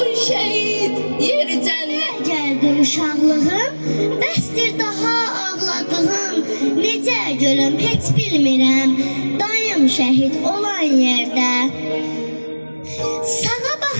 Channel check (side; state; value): both; inverted; correlation -1.00